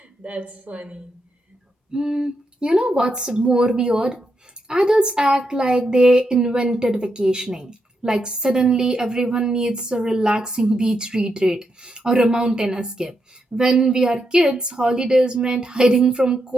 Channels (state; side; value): normal; both; correlation 0.83